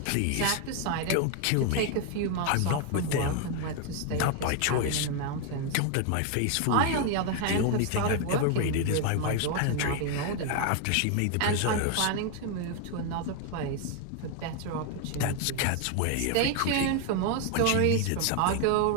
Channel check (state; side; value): different; both; correlation 0.01